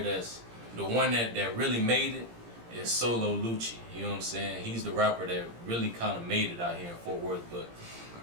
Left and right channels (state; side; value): late; left; 17 ms